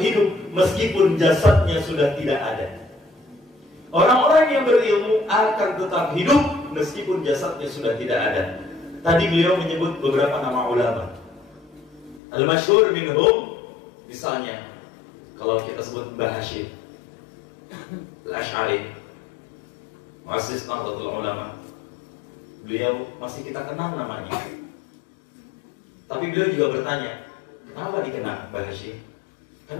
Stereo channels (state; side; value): drops out; right; at 12.2 s